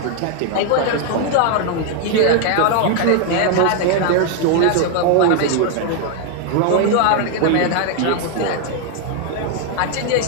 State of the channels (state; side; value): different; both; correlation 0.01